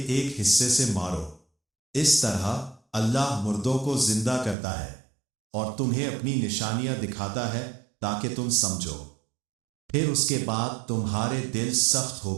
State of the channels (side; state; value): left; drops out; at 4.5 s